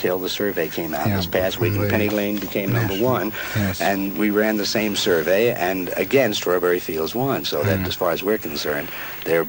the survey came out this past week, and Penny Lane became number one. Yes. And we ran the same survey, and again, Strawberry Fields won. So that, as far as we're concerned,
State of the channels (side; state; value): both; identical; correlation 1.00